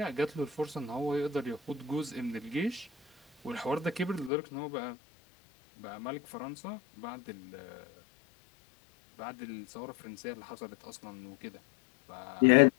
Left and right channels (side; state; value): right; drops out; at 4.3 s